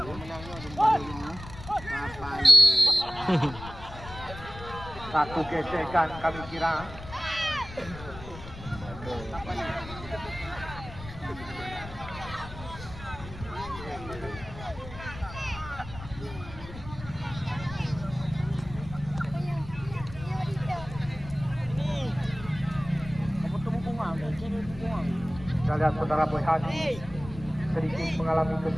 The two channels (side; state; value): left; noise; rumble, 13 dB below the sound